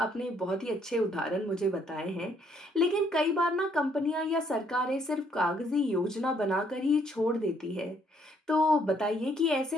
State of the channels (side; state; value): both; normal; correlation 0.68